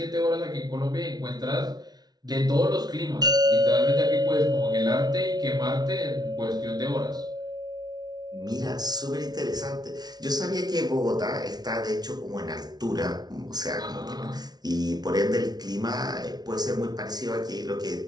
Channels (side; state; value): left; late; 0.19 ms